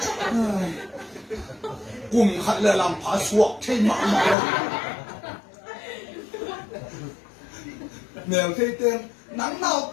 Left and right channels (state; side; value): drops out; right; at 4.4 s